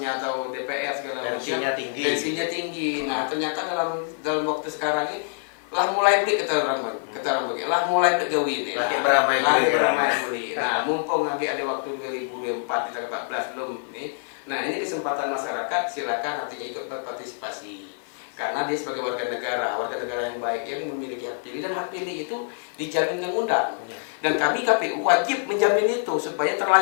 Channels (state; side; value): silent; right; 61 dB below the other